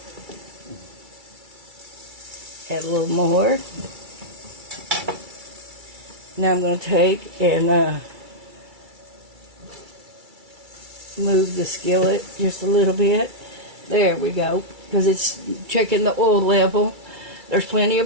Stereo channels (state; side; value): late; left; 2.3 ms